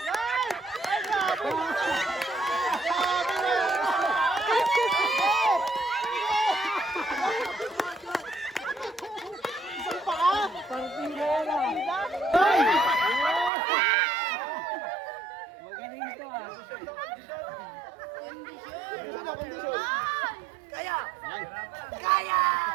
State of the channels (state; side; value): drops out; left; at 13.5 s